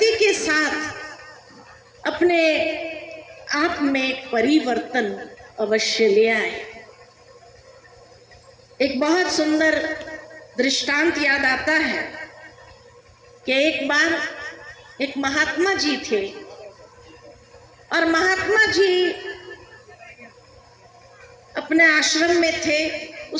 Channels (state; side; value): identical; both; correlation 1.00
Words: के साथ अपने आप में परिवर्तन अवश्य ले आए। एक बहुत सुंदर दृष्टांत याद आता है कि एक बार एक महात्मा जी थे और महात्मा जी अपने आश्रम में थे।